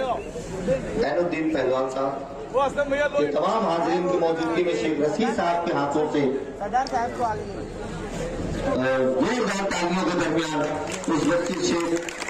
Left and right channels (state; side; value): identical; both; correlation 1.00